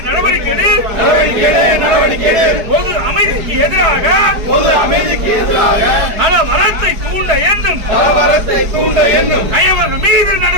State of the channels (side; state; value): left; late; 4.7 ms